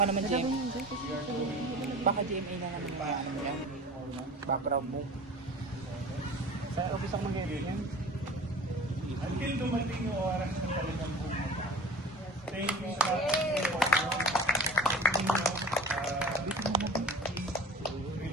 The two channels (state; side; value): normal; both; correlation 0.39